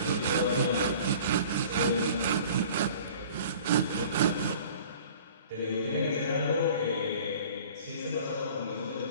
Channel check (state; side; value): inverted; both; correlation -0.47